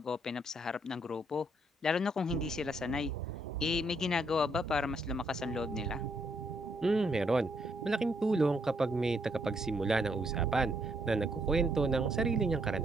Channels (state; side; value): normal; both; correlation 0.72